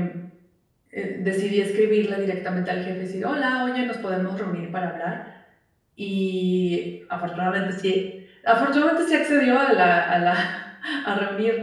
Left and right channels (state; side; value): identical; both; correlation 1.00